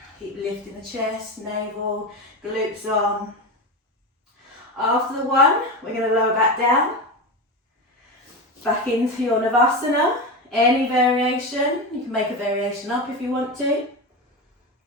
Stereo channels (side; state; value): both; normal; correlation 0.19